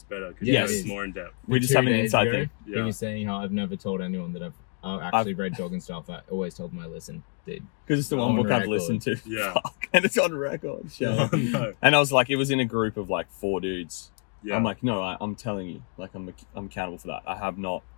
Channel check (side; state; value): right; quieter; 40.0 dB